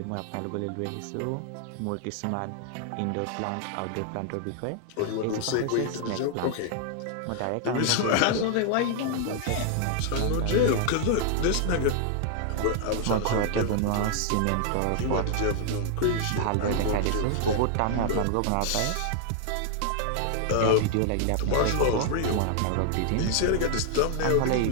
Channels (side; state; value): both; different; correlation 0.00